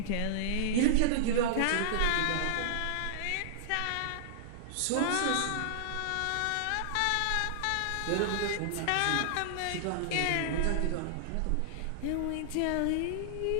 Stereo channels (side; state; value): both; different; correlation -0.01